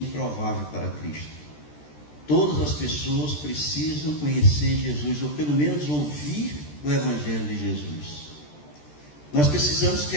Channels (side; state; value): right; late; 13 ms